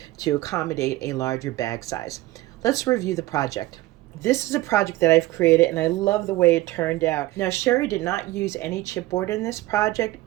to accommodate a larger bag size. Let's review the project. This is a project that I've created, and I love the way it turned out. Now, Sherry did not use any chipboard in this project.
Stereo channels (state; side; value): quieter; left; 17.9 dB